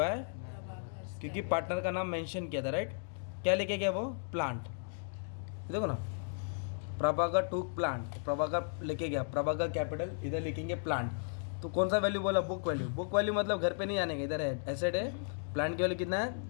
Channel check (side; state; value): right; silent; digital silence